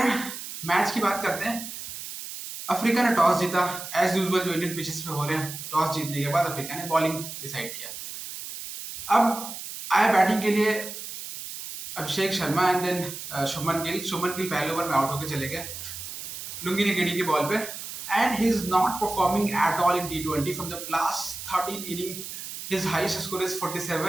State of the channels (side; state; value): right; noise; hiss, 9 dB below the sound